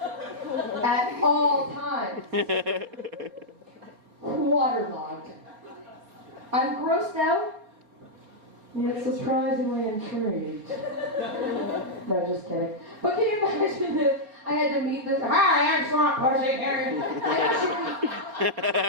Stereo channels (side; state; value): left; late; 4.7 ms